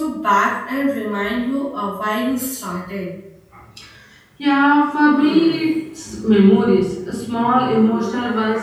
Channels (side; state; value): both; identical; correlation 1.00